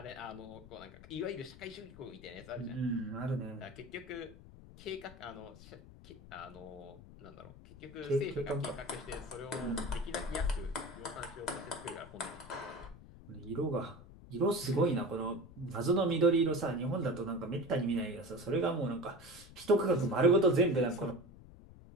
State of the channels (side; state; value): left; noise; rumble, 18 dB below the sound